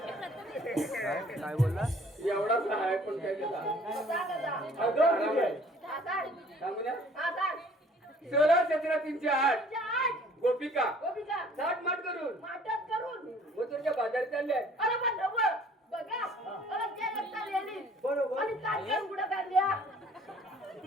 काय बोलला एवढाच आहे पण काय त्याला अगं किती आहे? सांगू ना आता 16-17-308 गोपिका गोपिका साठ माठ करून माटत करून मथुरच्या बाजारी चालले अरे पण ढवळ बघा अरे ते लगता लिहिली बरोबर आणि काढल्या कुठं काढल्या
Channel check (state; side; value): normal; both; correlation 0.54